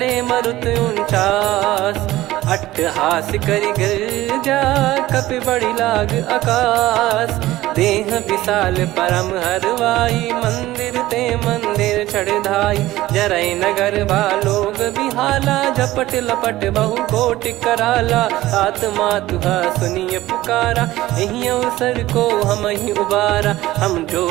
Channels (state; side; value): quieter; left; 16.5 dB